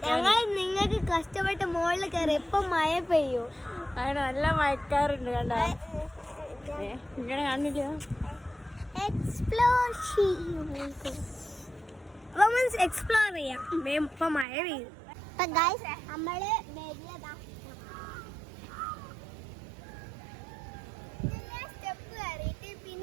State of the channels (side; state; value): left; drops out; at 14.5 s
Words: നിങ്ങൾക്ക് കഷ്ടപ്പെട്ട് മുകളിൽ കയറി ഇപ്പൊ മഴ പെയ്യൂ. അങ്ങനെ നല്ല മഴക്കാറുണ്ട്. കണ്ടോ ഇങ്ങനെ കാണില്ല. എക്സ്പ്ലോർ ചെയ്യാം. ഇപ്പൊ മഴ പെയ്യും. നമ്മള് സ്റ്റെപ്പ് കയറിയിട്ട്